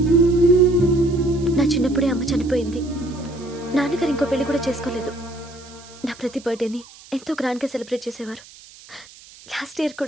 నా చిన్నప్పుడే అమ్మ చనిపోయింది. నాన్నగారు ఇంకో పెళ్లి కూడా చేసుకోలేదు. నా ప్రతి బర్త్డేని ఎంతో గ్రాండ్గా సెలబ్రేట్ చేసేవారు. లాస్ట్ ఇయర్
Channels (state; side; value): noise; right; hiss, 21 dB below the sound